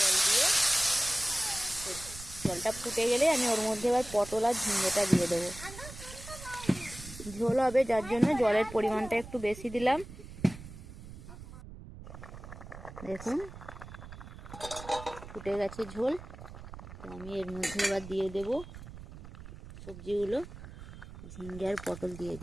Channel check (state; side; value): noise; right; rumble, 14 dB below the sound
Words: দিয়ে, জলটা ফুটে গেলে আমি ওর মধ্যে এবার পটল আর ঝিঙেটা দিয়ে দেবো। ঝোল হবে যার জন্য জলের পরিমাণটা একটু বেশি দিলাম। দেখুন ফুটে গেছে ঝোল, তো আমি এর মধ্যে এবার দিয়ে দেব সবজিগুলো। ঝিঙ্গে আর পটল দিয়ে